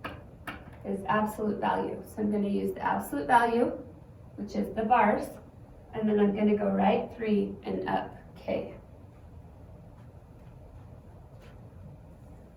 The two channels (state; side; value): identical; both; correlation 1.00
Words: is absolute value. So I'm going to use the absolute value, which is the bars, and then I'm going to go right 3 and up K.